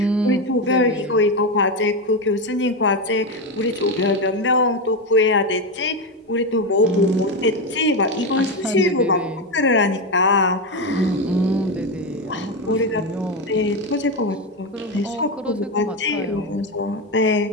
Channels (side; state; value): both; normal; correlation 0.11